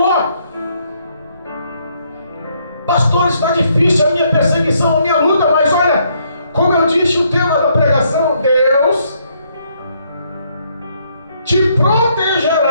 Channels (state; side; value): inverted; both; correlation -0.71